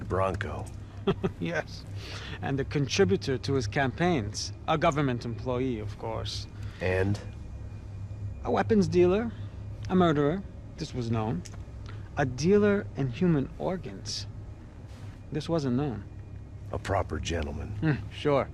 Yes. And a contributor to his campaigns. A government employee, of course. And? A weapons dealer. A murderer. This was known. A dealer in human organs. This wasn't known. A proper gentleman. Sure.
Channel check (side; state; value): both; identical; correlation 1.00